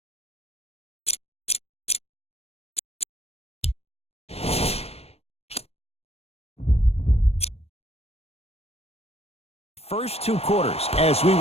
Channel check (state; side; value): late; right; 0.29 ms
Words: first 2 quarters as we